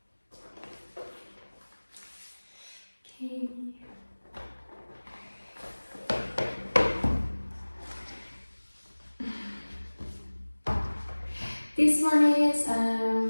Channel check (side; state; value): both; inverted; correlation -1.00